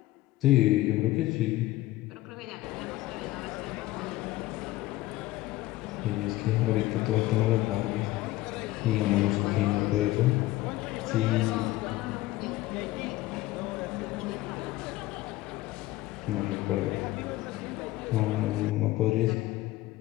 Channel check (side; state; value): right; quieter; 17.2 dB